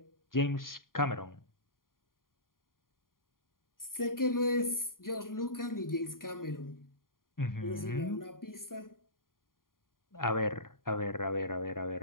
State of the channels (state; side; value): late; right; 0.91 ms